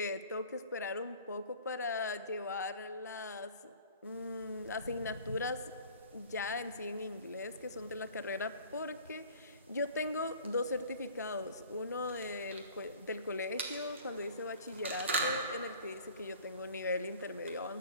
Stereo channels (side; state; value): both; inverted; correlation -0.47